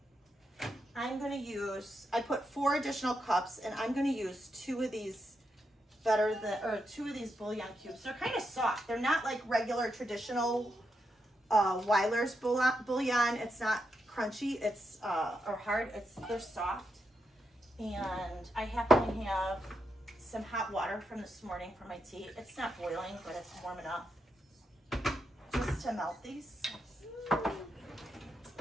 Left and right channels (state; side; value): normal; both; correlation 0.83